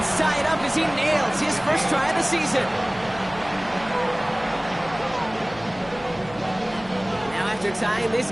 tie it up as he nails his first try of the season. Now after tying this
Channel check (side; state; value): left; noise; hum, 19 dB below the sound